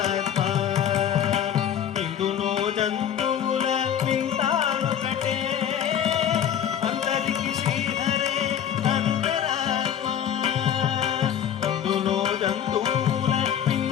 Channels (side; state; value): right; quieter; 9.5 dB